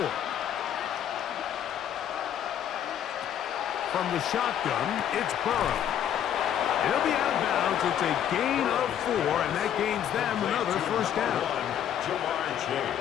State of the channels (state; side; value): quieter; right; 9.9 dB